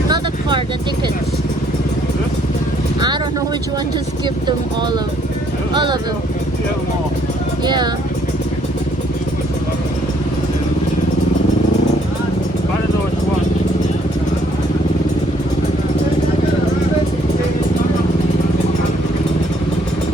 The tickets. I don't know which one. Just give them all of them. Yeah. I don't know which one.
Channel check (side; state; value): both; normal; correlation 0.66